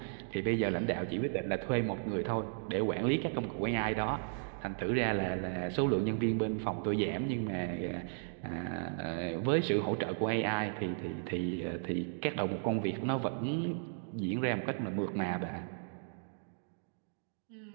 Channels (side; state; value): left; silent; digital silence